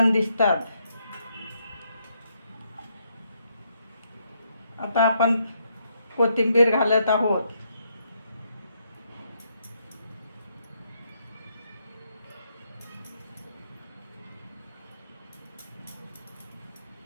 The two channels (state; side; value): inverted; both; correlation -0.76